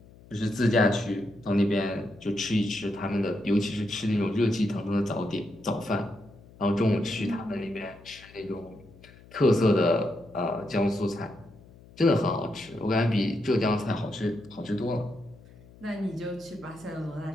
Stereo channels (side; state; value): left; noise; hum, 23 dB below the sound